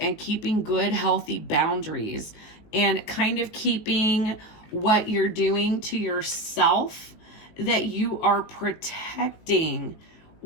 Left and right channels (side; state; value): right; late; 19 ms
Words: keeping good, healthy boundaries and kind of keeping what you're doing to yourself, that you are protecting